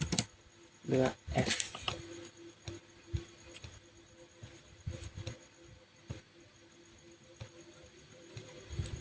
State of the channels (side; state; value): both; identical; correlation 1.00